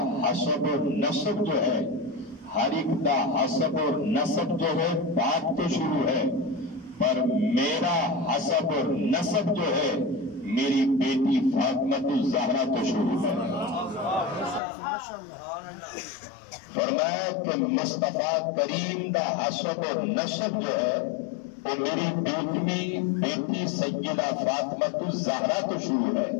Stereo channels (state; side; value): drops out; right; at 14.6 s